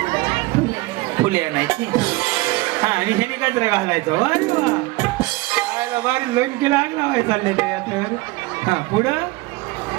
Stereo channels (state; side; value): quieter; left; 20.9 dB